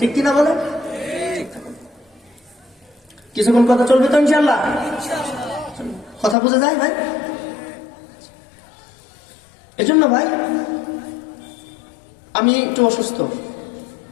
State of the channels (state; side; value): drops out; right; at 6.4 s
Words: কিনা বলেন? কিছুক্ষণ কথা চলবে তো ইনশাআল্লাহ? কথা বোঝা যায় ভাই? এজন্য ভাই আমি একটু অসুস্থ,